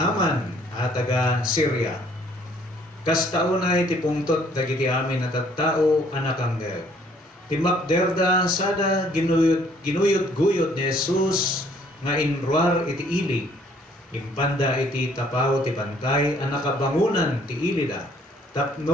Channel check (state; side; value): normal; both; correlation 0.62